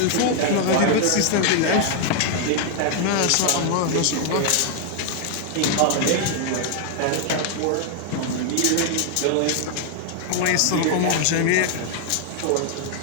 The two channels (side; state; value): both; different; correlation 0.00